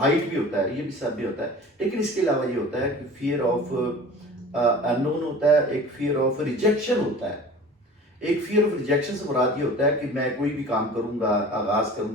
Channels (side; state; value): both; normal; correlation 0.41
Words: بھی ہوتا ہے، یہ بھی سب بھی ہوتا ہے. لیکن اس کے علاوہ یہ ہوتا ہے کہ فیئر آف ان نون ہوتا ہے، ایک فیئر آف ریجیکشن ہوتا ہے. ایک فیئر آف ریجیکشن سے مراد یہ ہوتا ہے کہ میں کوئی بھی کام کروں گا، آغاز کروں